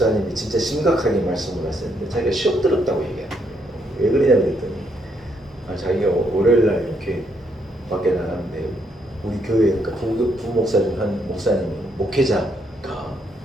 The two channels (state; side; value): normal; both; correlation 0.74